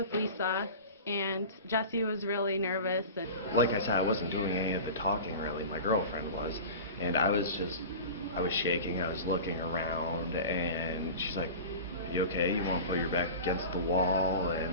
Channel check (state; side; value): inverted; both; correlation -0.33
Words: Lisa, and Jesse was really nervous. And like I said, I wasn't doing any of the talking really. My girlfriend was, and I was shaking. I was looking around, and she's like, "You okay? You want to put your back against the wall?"